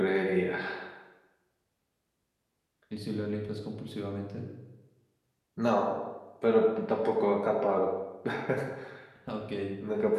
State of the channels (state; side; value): identical; both; correlation 1.00